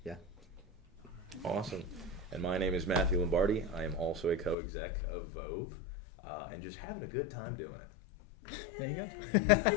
Yeah. Awesome. And my name is Matthew Lombardi. I am also a co-exec of VOVE and just having a good time doing it. There you go.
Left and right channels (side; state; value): right; drops out; at 4.5 s